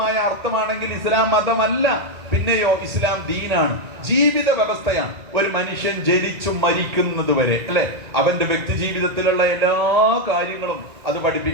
അർത്ഥമാണെങ്കിൽ ഇസ്ലാം മതമല്ല, പിന്നെയോ ഇസ്ലാം ദീനാണ്, ജീവിത വ്യവസ്ഥയാണ്. ഒരു മനുഷ്യൻ ജനിച്ചു മരിക്കുന്നത് വരെ അല്ലെ, അവന്റെ വ്യക്തി ജീവിതത്തിലുള്ള എല്ലാ കാര്യങ്ങളും അത്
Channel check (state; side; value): late; left; 2.0 ms